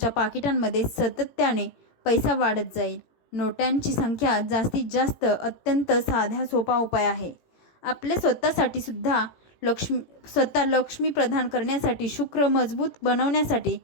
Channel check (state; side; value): late; right; 18 ms